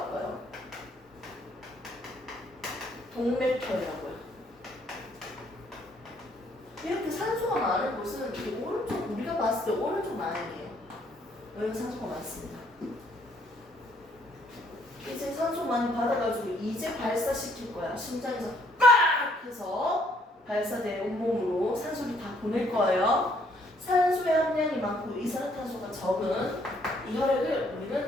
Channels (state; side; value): normal; both; correlation 0.66